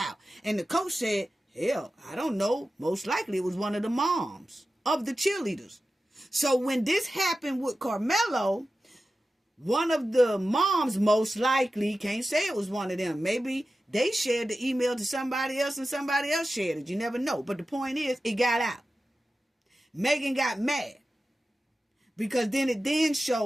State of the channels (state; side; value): normal; both; correlation 0.93